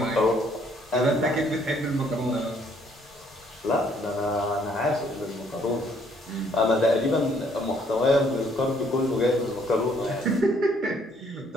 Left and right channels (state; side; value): normal; both; correlation 0.65